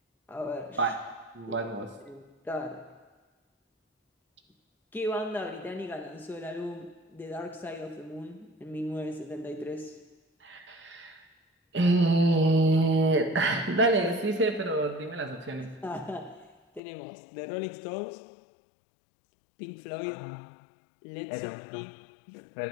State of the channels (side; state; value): right; drops out; at 16.8 s